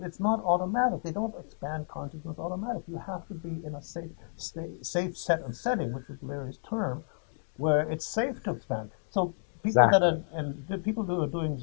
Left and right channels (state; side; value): silent; right; digital silence